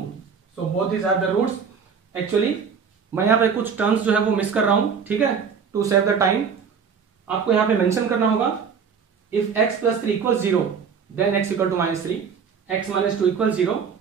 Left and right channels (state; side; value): quieter; left; 6.3 dB